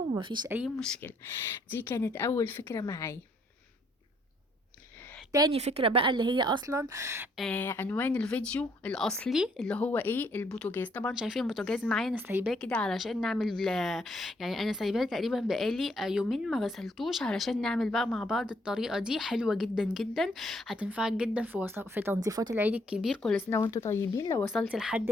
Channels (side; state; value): both; normal; correlation 0.69